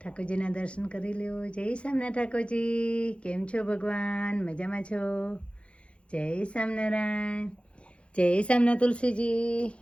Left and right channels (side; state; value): right; late; 0.059 ms